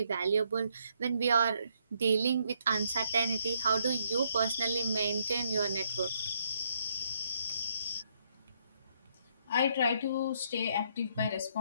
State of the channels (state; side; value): inverted; both; correlation -0.72